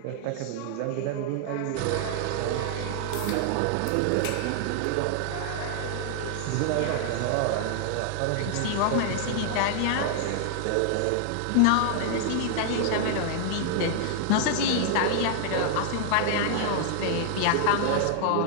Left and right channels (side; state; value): both; different; correlation 0.00